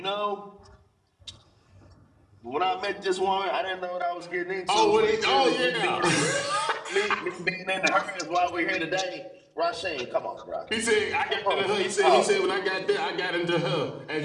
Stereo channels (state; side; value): identical; both; correlation 1.00